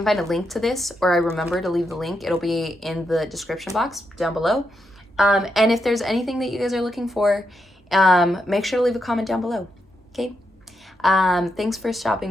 find a link to this, or I remember to leave the link. It'll be in the description box down below. And if there's anything that you guys are looking for, make sure to leave a comment down below. Okay? Thanks for stopping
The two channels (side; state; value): both; normal; correlation 0.83